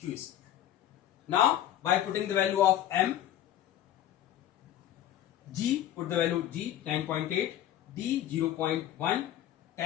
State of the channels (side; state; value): right; quieter; 11.9 dB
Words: square. Now by putting the value of m, g, put the value g 9.8, d 0.1,